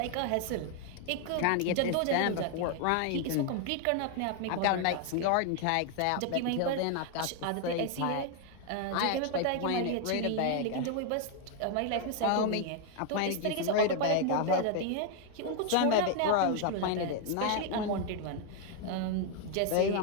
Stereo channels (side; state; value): both; different; correlation 0.00